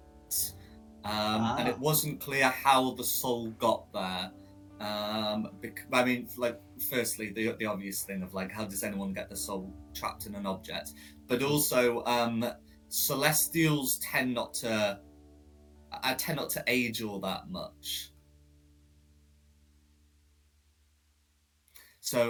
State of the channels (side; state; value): both; identical; correlation 1.00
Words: and it wasn't clear how the soul got there. I mean, like, firstly, the obvious thing of like, how does anyone get the soul trapped in an object? But also, Celestials tend not to age all that much.